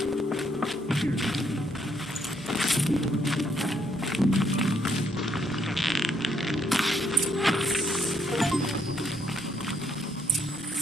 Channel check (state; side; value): normal; both; correlation 0.72